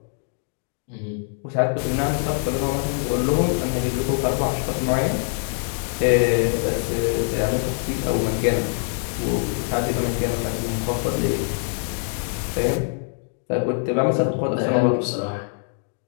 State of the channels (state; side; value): silent; right; 62 dB below the other